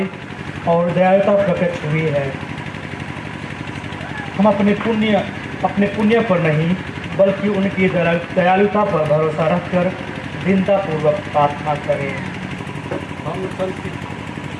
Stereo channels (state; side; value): identical; both; correlation 1.00